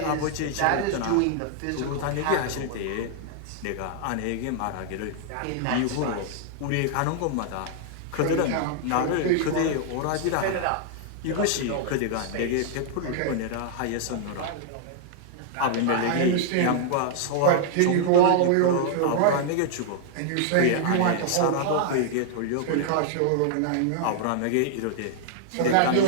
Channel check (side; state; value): both; different; correlation -0.01